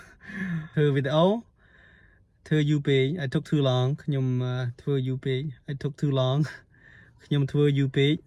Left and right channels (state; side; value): identical; both; correlation 1.00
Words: ធ្វើវីដេអូ ធ្វើយូរពេក I took too long. ខ្ញុំធ្វើយូរពេក I took too long. ខ្ញុំធ្វើយូរពេក